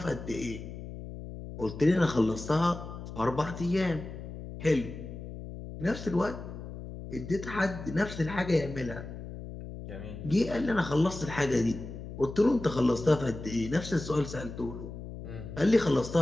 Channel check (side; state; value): left; noise; hum, 10 dB below the sound